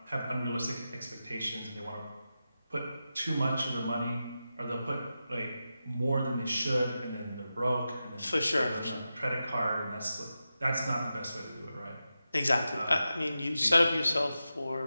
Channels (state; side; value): inverted; both; correlation -0.91